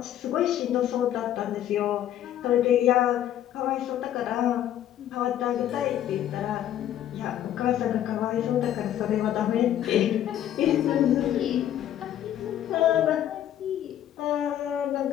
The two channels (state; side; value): quieter; right; 11.4 dB